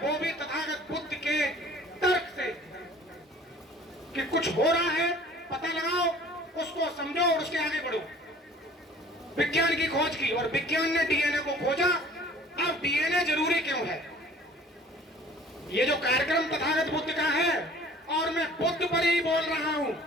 भी तथागत बुद्ध के तर्क से कि कुछ हो रहा है, पता लगाओ, उसको समझो और उसके आगे बढ़ो। विज्ञान की खोज की और विज्ञान ने डीएनए को खोजा। अब डीएनए जरूरी क्यों है? ये जो कार्यक्रम तथागत बुद्ध का है और मैं बुद्ध पर ही बोल रहा हूं,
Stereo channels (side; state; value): both; normal; correlation 0.49